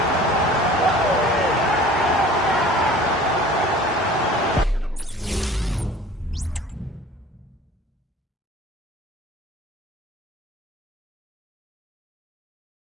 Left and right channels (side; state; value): both; normal; correlation 0.46